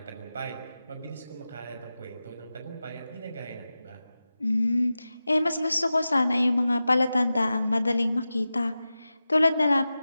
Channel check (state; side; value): inverted; both; correlation -0.94